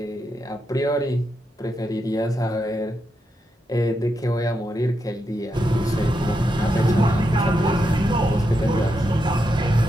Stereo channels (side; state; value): both; normal; correlation 0.84